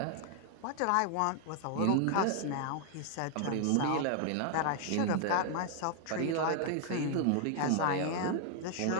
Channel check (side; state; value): both; different; correlation 0.00